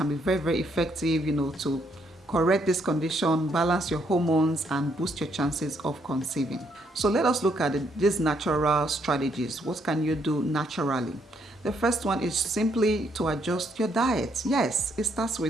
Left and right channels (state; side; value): normal; both; correlation 0.72